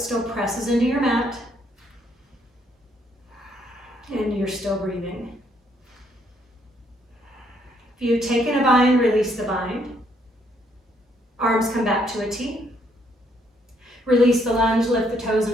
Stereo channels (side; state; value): both; normal; correlation 0.70